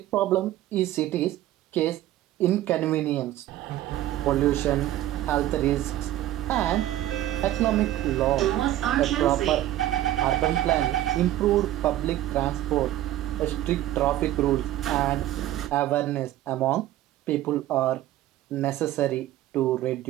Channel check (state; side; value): quieter; left; 13.9 dB